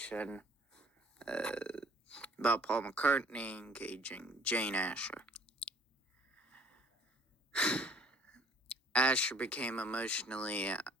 about Paul McCartney engaging Jane Asher. Asher became emotionally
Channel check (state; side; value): normal; both; correlation 0.55